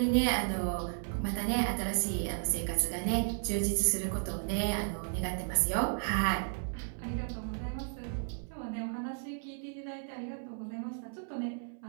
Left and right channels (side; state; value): left; silent; 55 dB below the other